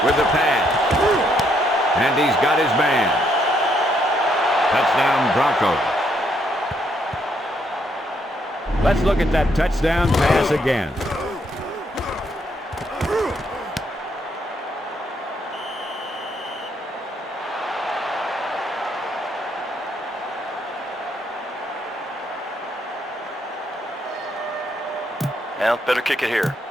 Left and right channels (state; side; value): normal; both; correlation 0.73